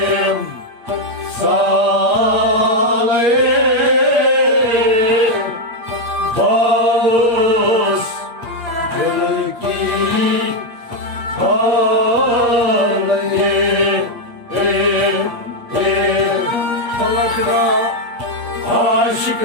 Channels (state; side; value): late; left; 8.8 ms